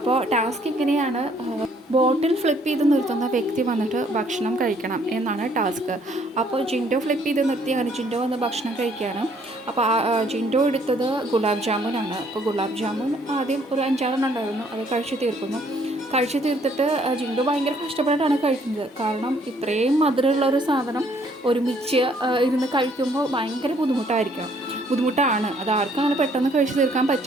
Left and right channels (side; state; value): both; normal; correlation 0.64